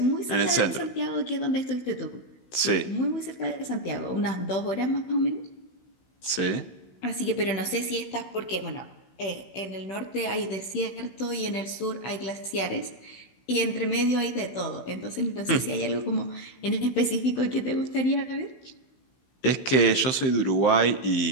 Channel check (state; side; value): late; right; 16 ms